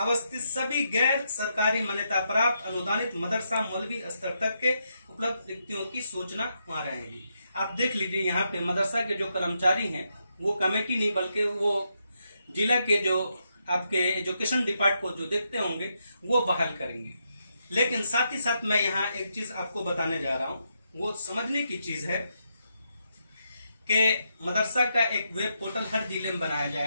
सभी गैर सरकारी मान्यता प्राप्त अनुदानित मदरसा मौलवी स्तर तक के उपलब्ध रिक्तियों की सूचना वहां रहेगी। आप देख लीजिए, यहाँ पे मदरसा के जो कर्मचारी हैं वो कमेटी नहीं बल्कि वो जिला के जो आपके एजुकेशन डिपार्टमेंट को जो देखते होंगे वो बहाल करेंगे। लेकिन साथ ही साथ मैं यहाँ एक चीज आपको बताने जा रहा हूँ, वो समझने की चीज है कि मदरसा का एक वेब पोर्टल हर जिले में बनाया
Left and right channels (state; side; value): inverted; both; correlation -0.81